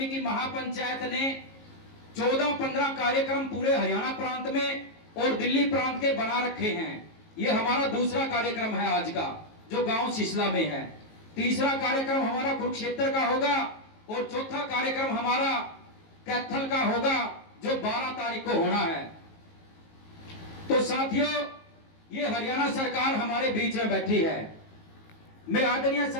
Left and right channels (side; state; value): right; late; 19 ms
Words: महापंचायत ने 14-15 कार्यक्रम पूरे हरियाणा प्रांत में और दिल्ली प्रांत के बना रखे हैं। ये हमारा दूसरा कार्यक्रम है आज का, जो गांव सिसला में है। तीसरा कार्यक्रम हमारा कुरुक्षेत्र का होगा और चौथा कार्यक्रम हमारा कैथल का होगा, जो 12 तारीख को होना है। तो साथियों, ये हरियाणा सरकार हमारे बीच में बैठी है। मैं आदरणीय